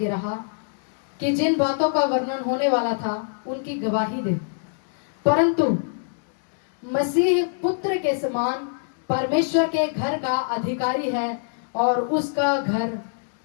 रहा कि जिन बातों का वर्णन होने वाला था उनकी गवाही दे, परंतु मसीह पुत्र के समान परमेश्वर के घर का अधिकारी है और उसका घर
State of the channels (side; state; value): right; silent; digital silence